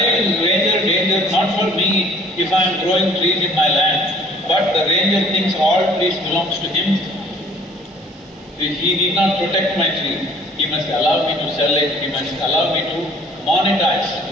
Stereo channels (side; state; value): both; normal; correlation 0.55